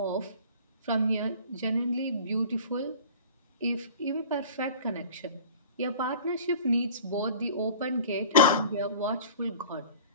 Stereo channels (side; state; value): both; inverted; correlation -0.43